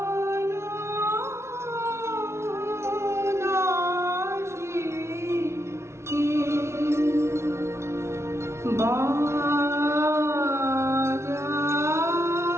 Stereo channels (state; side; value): late; left; 0.13 ms